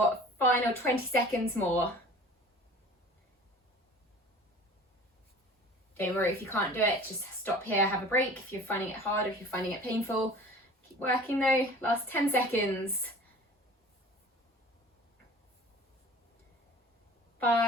final 20 seconds more. Don't worry if you can't do it, just stop here, have a break if you're finding it hard, if you're finding it painful. Keep working though, last 10 seconds.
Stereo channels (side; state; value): both; normal; correlation 0.44